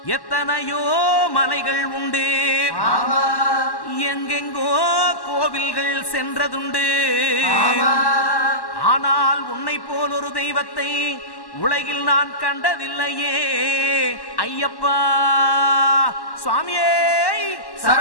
எத்தனையோ மலைகள் உண்டு, எங்கெங்கோ கோவில்கள் சென்றதுண்டு. ஆனால் உன்னை போல் ஒரு தெய்வத்தை உலகில் நான் கண்டதில்லையே ஐயப்பா. சுவாமியே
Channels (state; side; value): late; right; 1.1 ms